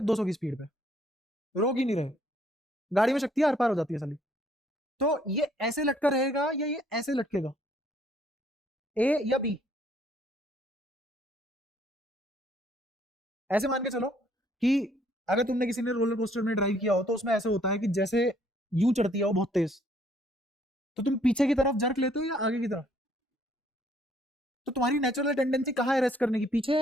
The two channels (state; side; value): normal; both; correlation 0.64